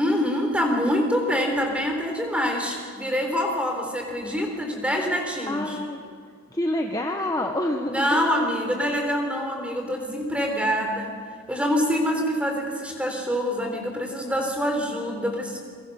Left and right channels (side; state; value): both; normal; correlation 0.62